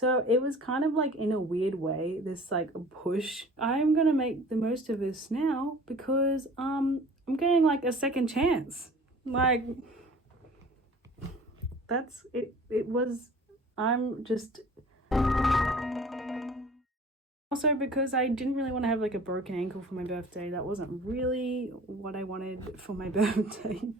it was kind of like, in a weird way, this like push. I'm gonna make the most of this now because I'm getting like a second chance. Like, that's it. I'm just, also because I didn't really want to have like a broken ankle for my birthday. That wasn't really what I wanted for my birthday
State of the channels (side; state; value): both; normal; correlation 0.46